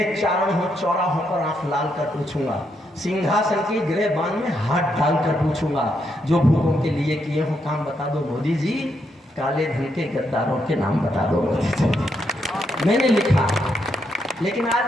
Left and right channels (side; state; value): both; normal; correlation 0.79